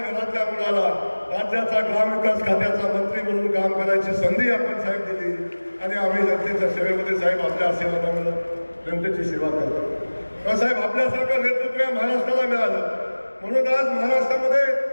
घरातल्या मुलाला राज्याचा ग्रामविकास खात्याचा मंत्री म्हणून काम करायची संधी आपण साहेब दिली आणि आम्ही जनतेच्या सेवेमध्ये साहेब आपल्या आशीर्वादामुळे जनतेची सेवा करतो. साहेब आपल्यासारखं नेतृत्व या महाराष्ट्राला मिळालं म्हणून आज महाराष्ट्रामध्ये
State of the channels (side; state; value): both; inverted; correlation -1.00